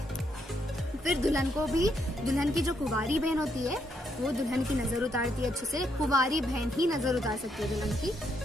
फिर दुल्हन को भी, दुल्हन की जो कुंवारी बहन होती है वो दुल्हन की नजर उतारती है अच्छे से। कुंवारी बहन ही नजर उतार सकती है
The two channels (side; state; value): both; normal; correlation 0.76